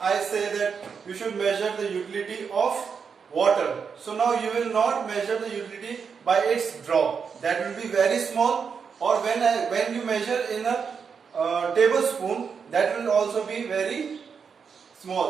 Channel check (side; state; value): left; quieter; 6.2 dB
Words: say that you should measure the utility of water, so now you will not measure the utility by its drop. That will be very small. Or when you measure in a tablespoon, that will also be very